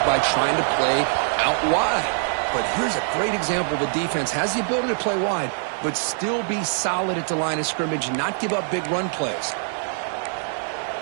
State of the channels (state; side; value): silent; left; 63 dB below the other